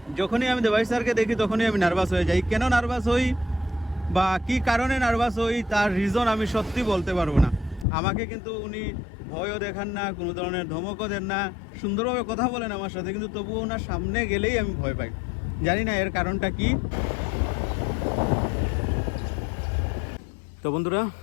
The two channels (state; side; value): drops out; right; at 7.9 s